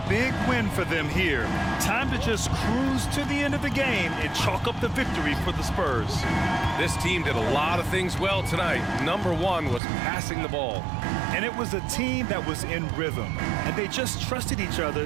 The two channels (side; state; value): left; drops out; at 9.8 s